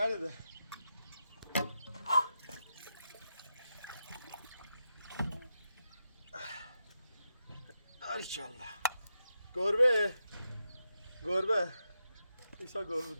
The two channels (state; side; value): inverted; both; correlation -0.87